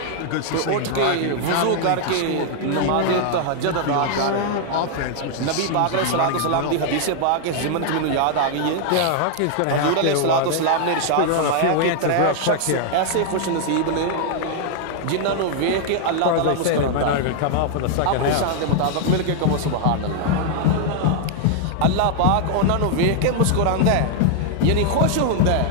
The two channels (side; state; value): both; different; correlation 0.00